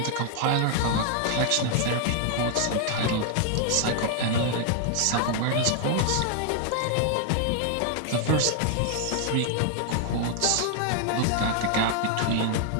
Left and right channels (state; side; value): different; both; correlation 0.00